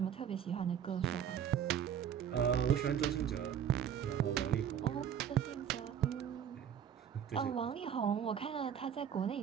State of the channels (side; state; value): left; quieter; 8.9 dB